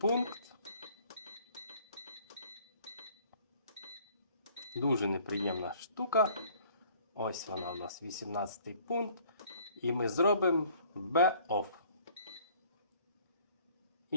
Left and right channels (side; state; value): both; inverted; correlation -0.56